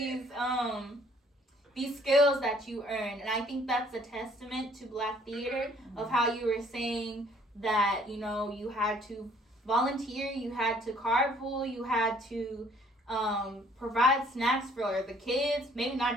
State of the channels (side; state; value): both; normal; correlation 0.59